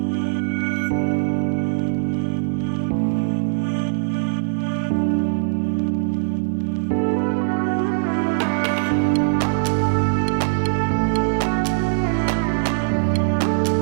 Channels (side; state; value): left; silent; 58 dB below the other